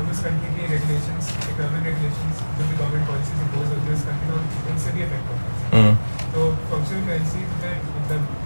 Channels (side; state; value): both; inverted; correlation -1.00